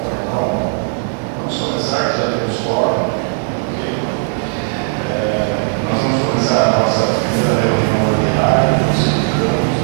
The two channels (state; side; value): silent; left; 56 dB below the other